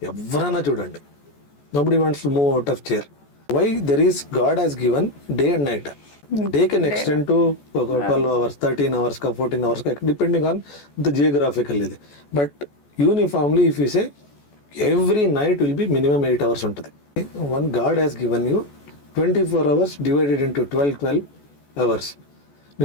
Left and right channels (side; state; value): right; late; 14 ms